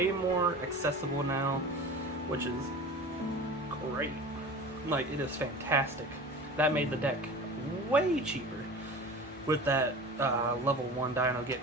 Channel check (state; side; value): normal; both; correlation 0.36